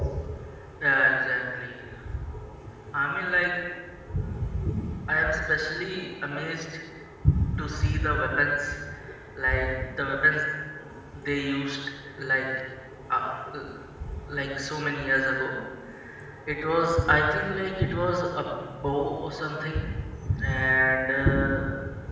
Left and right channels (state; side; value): identical; both; correlation 1.00